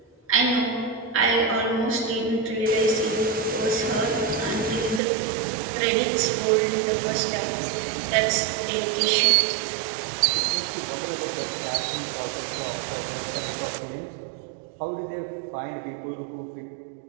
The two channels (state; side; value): drops out; left; at 5.0 s